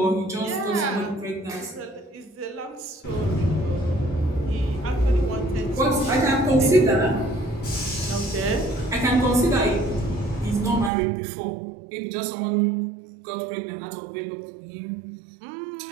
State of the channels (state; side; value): drops out; left; at 10.9 s